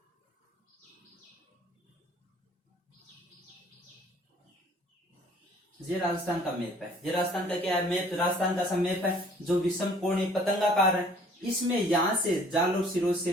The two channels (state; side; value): normal; both; correlation 0.55